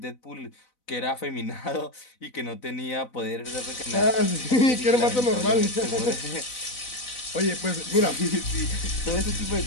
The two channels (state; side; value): late; right; 4.0 ms